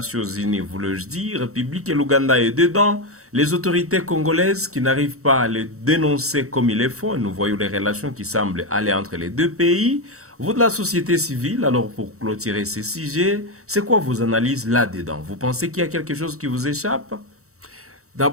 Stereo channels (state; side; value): late; left; 0.64 ms